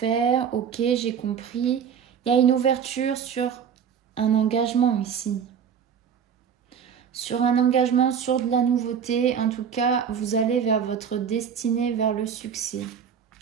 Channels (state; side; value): quieter; left; 7.5 dB